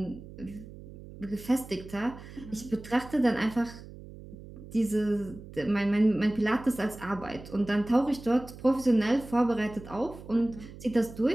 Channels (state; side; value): noise; right; hum, 16 dB below the sound